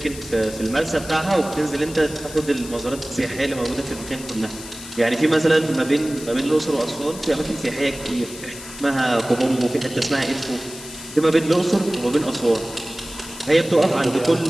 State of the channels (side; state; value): left; noise; hiss, 14 dB below the sound